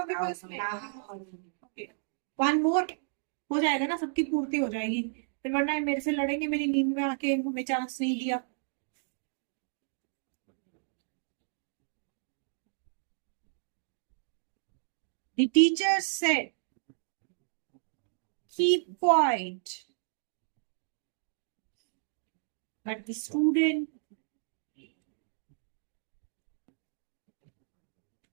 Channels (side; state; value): left; silent; digital silence